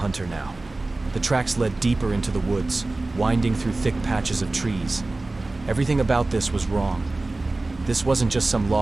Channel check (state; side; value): quieter; left; 3.1 dB